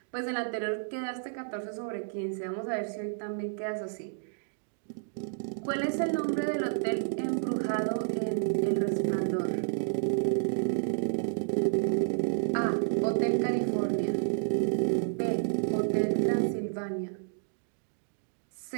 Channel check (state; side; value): silent; left; digital silence